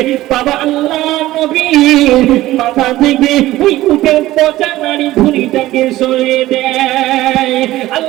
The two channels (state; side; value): quieter; left; 16.2 dB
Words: বাবা আল্লাহর নবীর মাথা থেকে ওই উটের পচা নারী ভুঁড়িটাকে সরিয়ে দেয়।